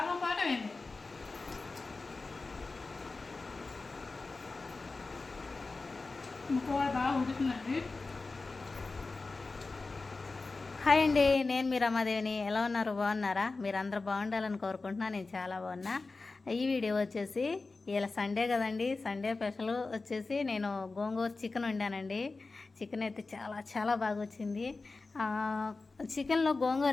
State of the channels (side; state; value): right; quieter; 3.7 dB